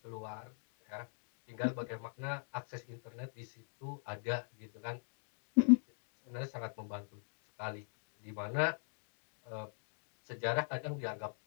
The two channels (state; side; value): silent; right; digital silence